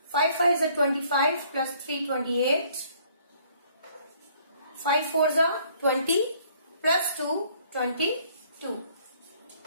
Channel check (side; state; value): both; inverted; correlation -0.61